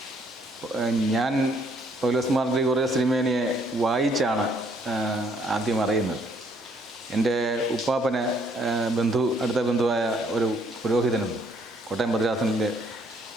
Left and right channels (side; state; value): both; normal; correlation 0.67